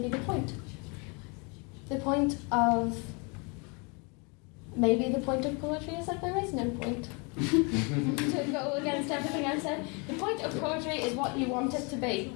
be the point. The point of poetry is that there is no point. To go against everything I've said, the point of poetry is what you want it to be.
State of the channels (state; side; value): quieter; right; 32.3 dB